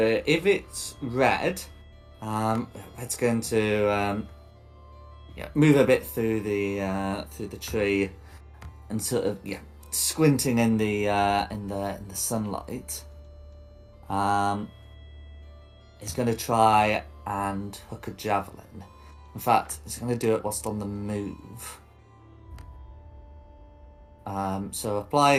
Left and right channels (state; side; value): identical; both; correlation 1.00